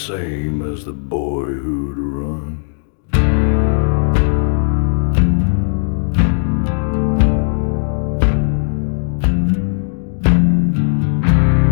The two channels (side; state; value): right; silent; digital silence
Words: as the boy who'd run.